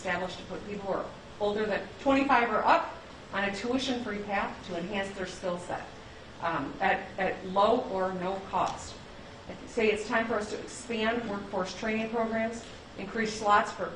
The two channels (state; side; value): identical; both; correlation 1.00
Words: to put people who are older than 25 or up on a tuition-free path to enhance their skill set at low or no cost. I say it's time for us to expand workforce training programs, increase slots for